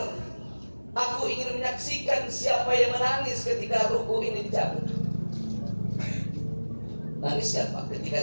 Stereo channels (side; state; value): both; inverted; correlation -1.00